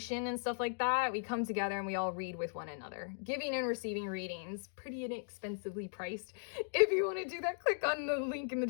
and stuff like that. We come together and we all read with one another. Giving and receiving readings, pretty inexpensively priced. If you want to do that, click on the link in the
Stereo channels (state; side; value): silent; right; digital silence